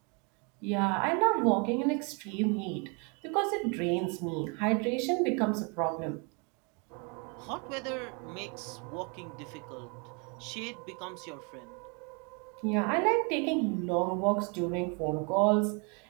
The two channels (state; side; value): quieter; left; 33.8 dB